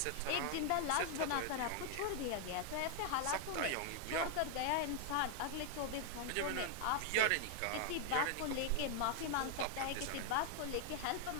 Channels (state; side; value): different; both; correlation 0.00